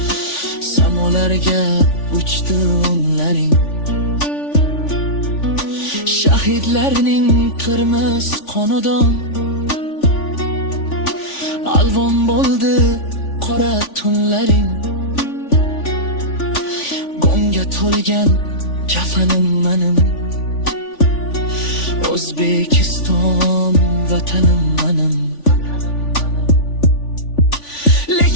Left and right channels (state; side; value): late; right; 3.5 ms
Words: samolarga uchdi o'nlaring. Shahidlarning qirmiz qonidan alvon bo'ldi qora tunlaring. G'amga to'lgan kafanim manim, O'zbekiston vatanim manim.